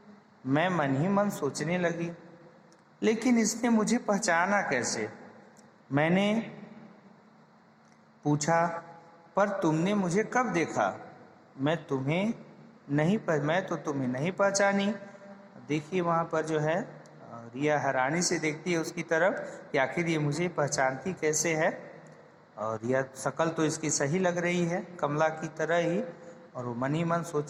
मैं मन ही मन सोचने लगी, लेकिन इसने मुझे पहचाना कैसे? मैंने पूछा, पर तुमने मुझे कब देखा? मैं तो तुम्हें नहीं पहचानी। देखिए वहाँ पर जो है रिया हैरानी से देखती है उसकी तरफ कि आखिर ये मुझे पहचानती कैसे है। और रिया शक्ल तो इसकी सही लग रही है, कमला की तरह ही। और वो मन ही मन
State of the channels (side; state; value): both; identical; correlation 1.00